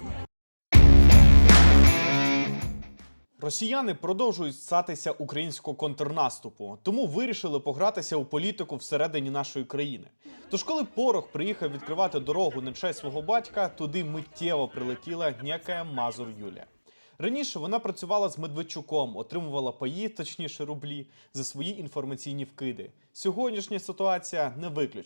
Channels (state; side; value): inverted; both; correlation -1.00